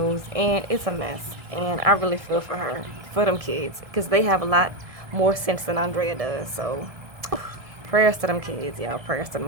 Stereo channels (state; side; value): late; left; 1.7 ms